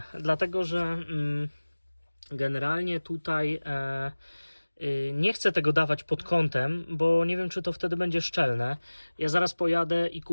dlatego że generalnie tutaj nie chcę tego dawać pod kątem, bo nie wiem, czy to wtedy będzie szczelne. Ja zaraz pojadę i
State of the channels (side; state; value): both; inverted; correlation -1.00